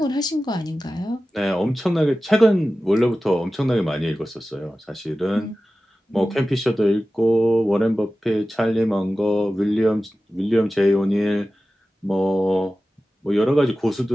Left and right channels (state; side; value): normal; both; correlation 0.95